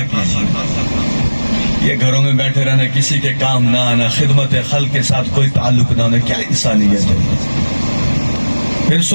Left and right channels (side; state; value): both; inverted; correlation -1.00